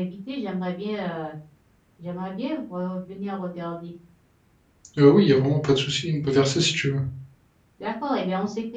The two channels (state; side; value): identical; both; correlation 1.00